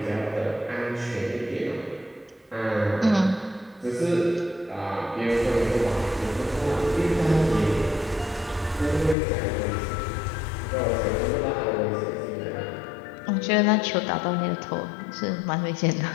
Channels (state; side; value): drops out; right; at 9.2 s